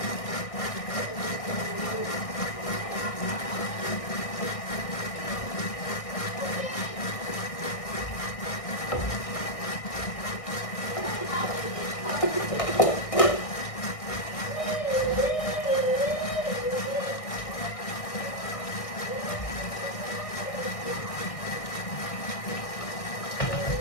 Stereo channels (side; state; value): right; late; 1.6 ms